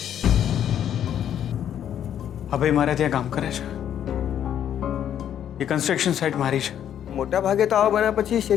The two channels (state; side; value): quieter; right; 9.9 dB